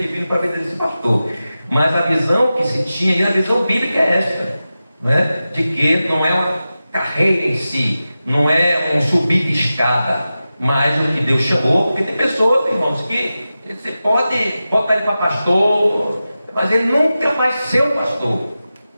para ver esse pastor. Mas a visão que se tinha, e a visão bíblica é esta, né? De que não é uma carreira em si, não é um subir de escada, mas o que Deus chamou, porque tem pessoas, irmãos, que você pode botar ele para pastor, mas ele nunca vai ser um pastor.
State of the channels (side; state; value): both; inverted; correlation -0.94